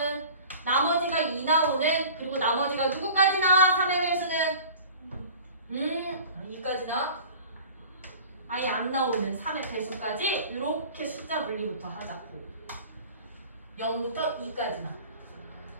나머지가 2 나오는, 그리고 나머지가 누구까지 나와? 3의 배수는 2까지 나와? 아예 안 나오는 3의 배수까지 이렇게 숫자 분리부터 하자고. 0부터 2까지 나.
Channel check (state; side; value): inverted; both; correlation -0.43